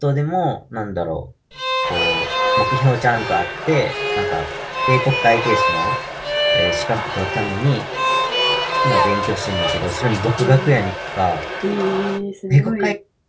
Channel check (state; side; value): identical; both; correlation 1.00